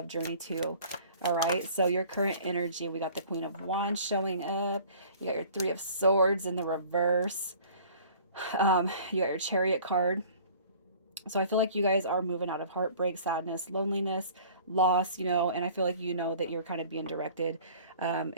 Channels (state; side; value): inverted; both; correlation -0.49